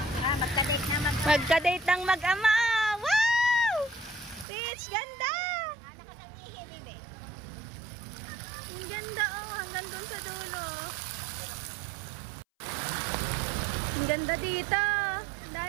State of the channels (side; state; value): left; drops out; at 4.5 s